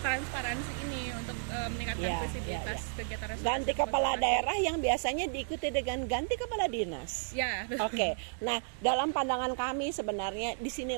transparansi ini, untuk meningkatkan visibilitas kegiatan restorasi. Ganti kepala daerah yang biasanya diikuti dengan ganti kepala dinas. Ya. Oke. Nah, dalam pandangan kami sebenarnya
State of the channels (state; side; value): silent; left; digital silence